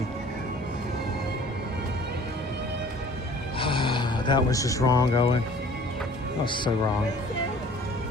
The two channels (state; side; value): normal; both; correlation 0.50